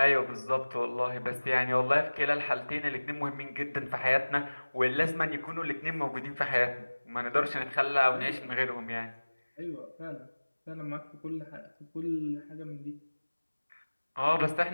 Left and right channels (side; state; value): both; inverted; correlation -1.00